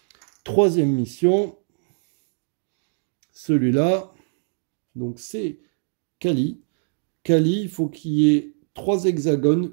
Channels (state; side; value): silent; left; digital silence